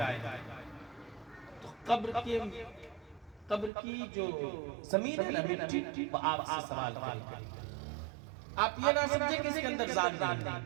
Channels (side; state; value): left; drops out; at 3.7 s